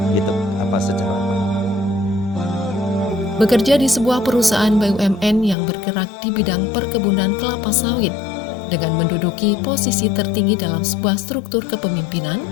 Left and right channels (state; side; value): drops out; right; at 5.6 s